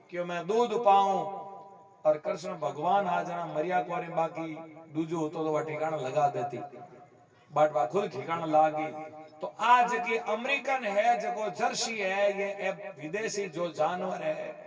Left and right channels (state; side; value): identical; both; correlation 1.00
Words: कि मैं दूध पाऊं और कृष्ण भगवान आ जाना मरिया कोरी बाकी दूजो तो वह ठिकाना लगा देती बट वह खुद ठिकाना लागी। तो आज की अमेरिकन है जो जर्सी है ये विदेशी जो जानवर है